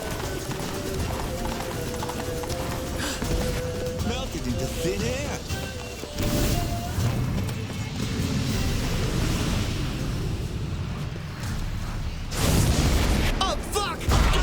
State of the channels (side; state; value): both; identical; correlation 1.00